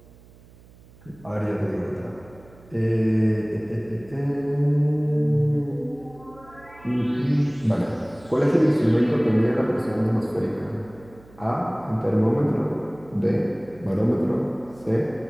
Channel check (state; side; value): noise; right; hum, 24 dB below the sound